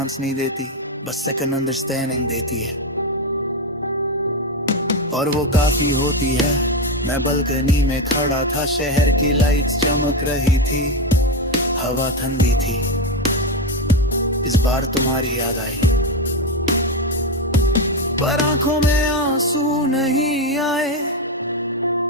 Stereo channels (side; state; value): both; normal; correlation 0.10